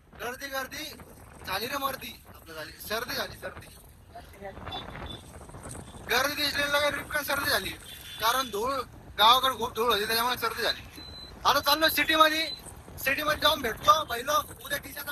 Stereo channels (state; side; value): identical; both; correlation 1.00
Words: गर्दी गर्दी झाली रे मर्दी आपलं झाली सर्दी गर्दी दिसलेली रिपकन सर्दी झाली कारण धूळ गावाकडे खूप धूळ होती त्याच्यामुळे सर्दी झाली. आता चाललो सिटी मध्ये जाऊन भेटतो. पहिलं उद्या